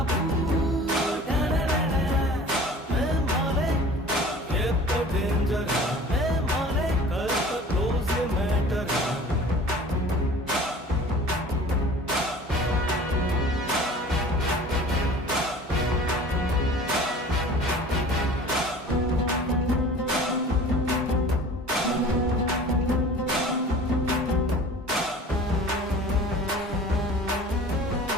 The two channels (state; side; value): normal; both; correlation 0.43